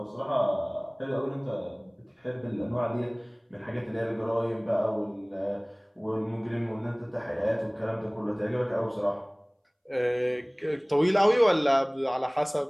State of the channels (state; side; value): identical; both; correlation 1.00